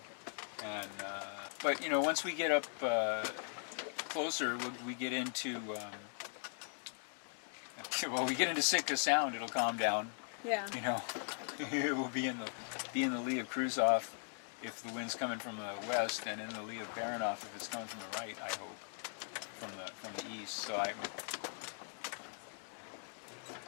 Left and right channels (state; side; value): silent; right; 51 dB below the other